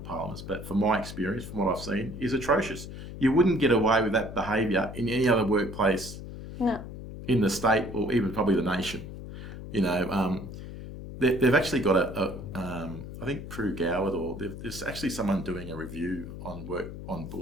but from my experience, from what I've seen, is atrocious. You wouldn't get away with that behaviour in any other workplace in the state or even probably the nation. You know, they've actually got I think Prue Goward, or there's actually someone doing a review on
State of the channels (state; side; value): noise; left; hum, 11 dB below the sound